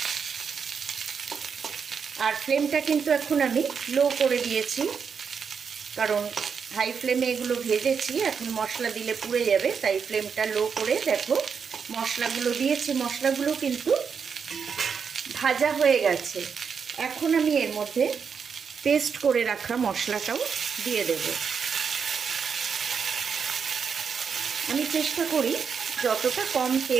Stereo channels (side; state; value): left; quieter; 6.3 dB